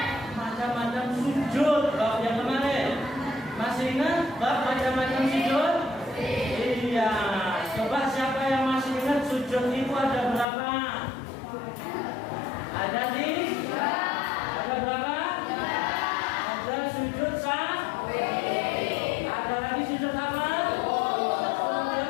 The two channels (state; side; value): drops out; right; at 10.5 s